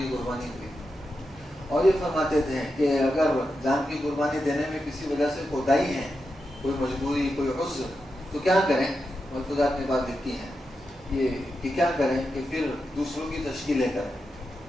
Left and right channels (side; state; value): both; normal; correlation 0.88